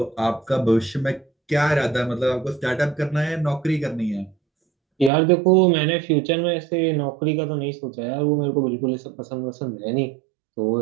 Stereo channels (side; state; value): left; drops out; at 5.1 s